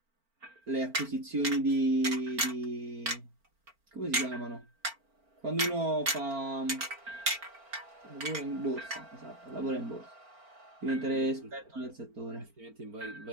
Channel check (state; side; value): late; left; 4.4 ms